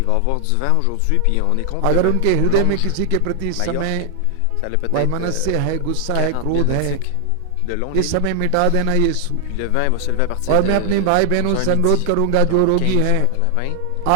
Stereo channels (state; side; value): different; both; correlation 0.00